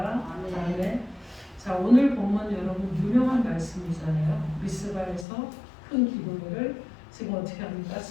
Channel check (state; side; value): drops out; right; at 5.2 s